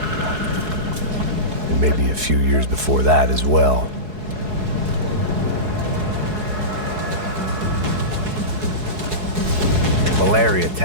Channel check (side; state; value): left; late; 4.7 ms